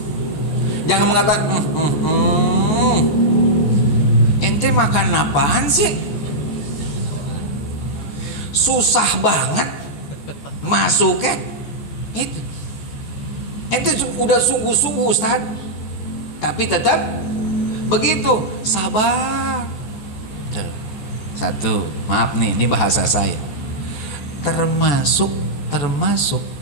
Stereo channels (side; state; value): right; late; 14 ms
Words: Jangan mengatakan ente makan apaan sih? Susah banget masuknya. Itu ente udah sungguh-sungguh Ustaz, tapi tetap begitu. Sabar. Satu, maaf nih, ini bahasa saya. Termasuk